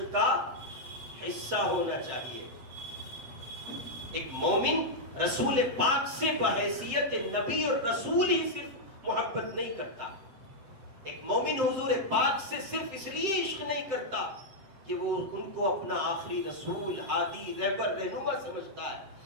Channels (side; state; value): left; late; 7.7 ms